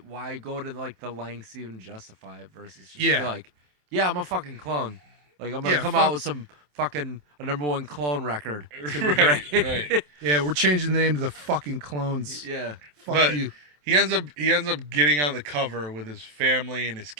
go to like the lengths to even justify it versus just be like, yeah, I'm a fucking clone. Like I'm gonna come out with some fucking a #1 clone record. It's gonna be great. Right. Yeah, we're changing the name to the fucking clones. Yeah. Fuck you. He ends up getting on the cover with his family and his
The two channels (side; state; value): left; late; 27 ms